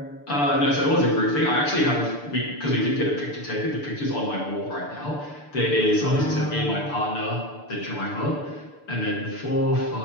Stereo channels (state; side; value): late; right; 6.8 ms